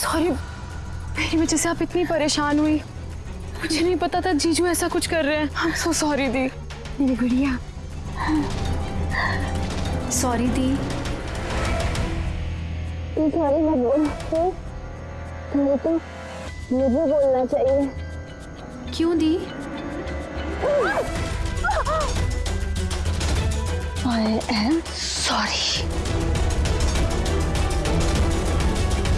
मेरी वजह से आप इतनी परेशान हुई। मुझे नहीं पता था जीजू ऐसा कुछ कर रहे हैं। आई एम सो सॉरी दी। मेरी गुड़िया, सॉरी दी। सॉरी मत बोल, तुम्हें तो मुझे बोलना चाहिए। क्यों दी? I am sorry.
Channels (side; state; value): both; identical; correlation 1.00